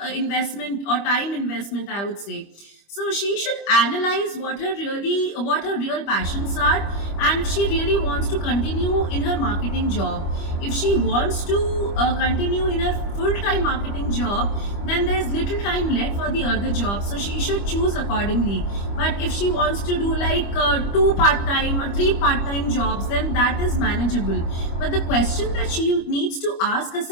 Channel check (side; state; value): right; late; 25 ms